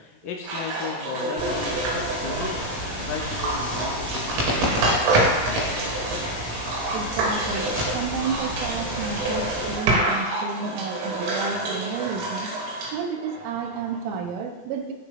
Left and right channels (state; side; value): late; left; 18 ms